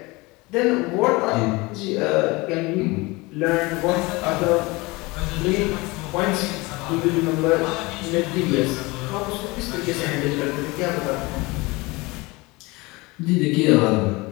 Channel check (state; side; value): quieter; right; 23.8 dB